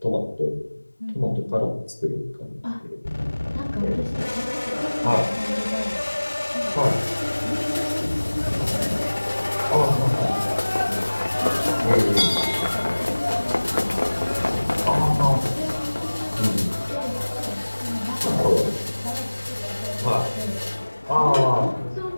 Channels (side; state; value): both; inverted; correlation -1.00